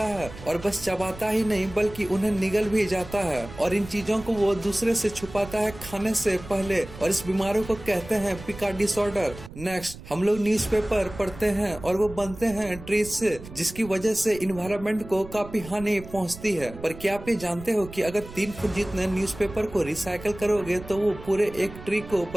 है, और बस चबाता ही नहीं बल्कि उन्हें निगल भी जाता है, और इन चीजों को वो दूसरे से छुपाता है खाने से पहले, और इस बीमारी को कहते हैं पिका डिसऑर्डर। नेक्स्ट, हम लोग न्यूज़पेपर पढ़ते हैं और वो बनते हैं ट्रीज से, जिसकी वजह से इन्वायरमेंट को काफी हानि पहुंचती है। पर क्या आप ये जानते हो कि अगर 3 फुट जितने न्यूज़पेपर को रिसाइकल करोगे तो वो पूरे एक ट्री को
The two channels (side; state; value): right; noise; rumble, 15 dB below the sound